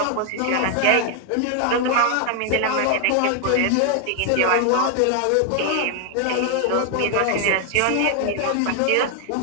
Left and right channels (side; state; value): both; different; correlation 0.00